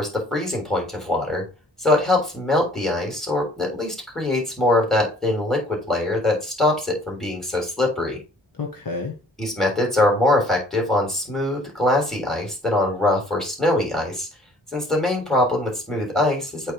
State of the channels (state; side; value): normal; both; correlation 0.55